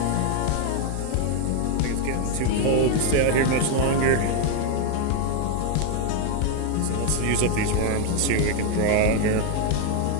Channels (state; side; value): different; both; correlation 0.01